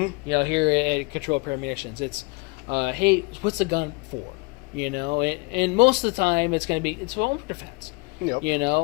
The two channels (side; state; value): right; quieter; 27.5 dB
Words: You know, here at Control Pair Munitions, it's, hey, what's the gun for? You know, and most of the time it's going to be, it's home defense. Yep. You